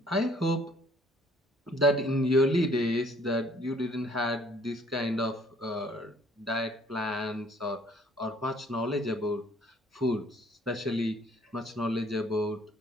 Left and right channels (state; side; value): normal; both; correlation 0.59